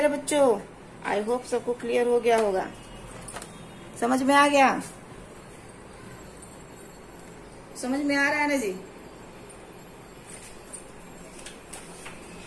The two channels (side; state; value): both; identical; correlation 1.00